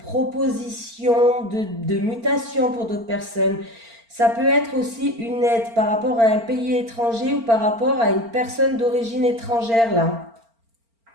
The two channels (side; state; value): left; late; 4.4 ms